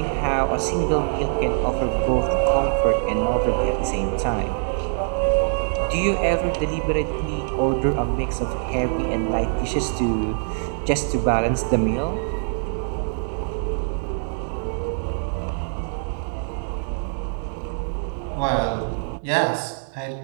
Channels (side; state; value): left; silent; digital silence